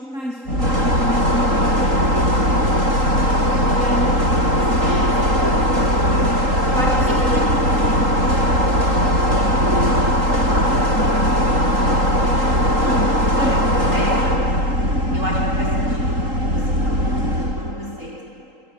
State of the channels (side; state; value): left; late; 3.8 ms